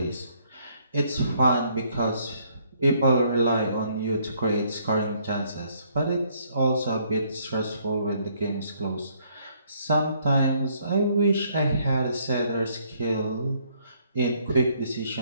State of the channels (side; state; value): both; inverted; correlation -0.67